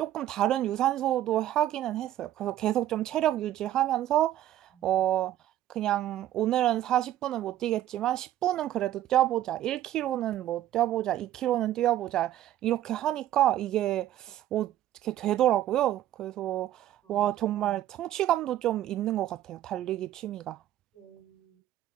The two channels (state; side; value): quieter; left; 12.9 dB